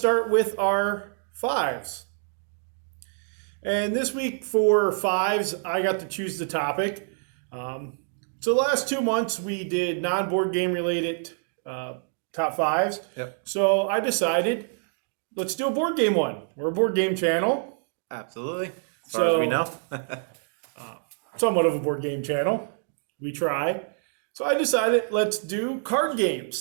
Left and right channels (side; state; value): left; silent; digital silence